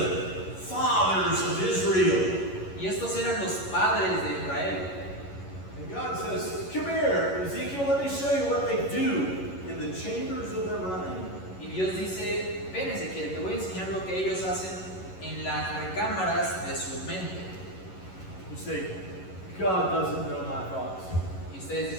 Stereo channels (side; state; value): right; late; 11 ms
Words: fathers of Israel. Y estos eran los padres de Israel. And God says, come here, Ezekiel, let me show you what they do in the chambers of their mind. Y Dios dice, ven Ezequiel, te voy a enseñar lo que ellos hacen en las recámaras de su mente. You say, God doesn't know my thoughts. Y ustedes